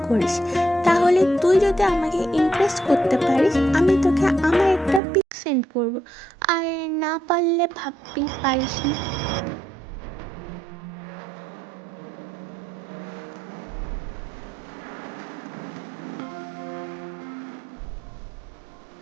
করিস, তাহলে তুই যদি আমাকে ইমপ্রেস করতে পারিস আমি তোকে আমার একটা পিক সেন্ড করবো, আর না পারলে ভাববি পারিস না।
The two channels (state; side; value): drops out; left; at 5.0 s